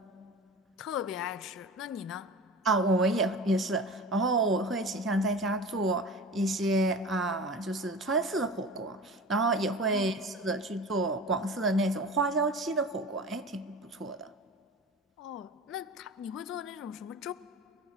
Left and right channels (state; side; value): normal; both; correlation 0.34